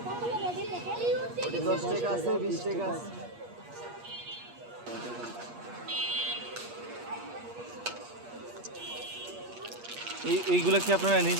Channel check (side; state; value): left; late; 8.4 ms